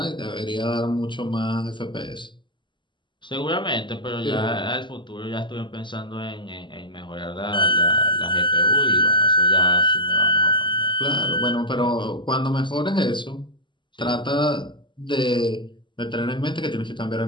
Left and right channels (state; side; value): late; right; 0.23 ms